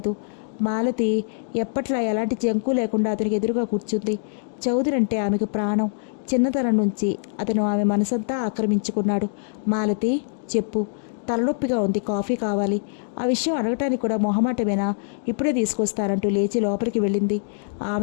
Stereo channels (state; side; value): silent; right; digital silence